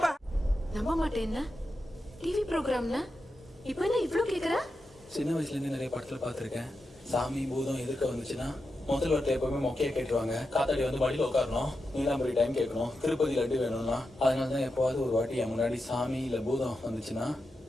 நம்ப மாட்டேன்னா டிவி ப்ரோக்ராம்னா இப்போ என்ன இவ்ளோ கேக்குற? சின்ன வயசுல இருந்து நிறைய படத்துல பாத்திருக்கேன். சாமி பூதம் எதிர்க்க வந்துச்சுன்னா முதல் வார்த்தை எப்பவுமே மொக்கையை கேட்டுருவாங்க. காத்தாடி வந்து வழியில் உட்காரணும், நீலாம்பரி டைம் கேட்கணும், திருப்பதி லட்டு வேணும்னா. அதனாலதான் எப்போவாது ஒரு வாட்டி என் முன்னாடி சாமி இல்ல பூதம் வந்துச்சுன்னா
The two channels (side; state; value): both; normal; correlation 0.89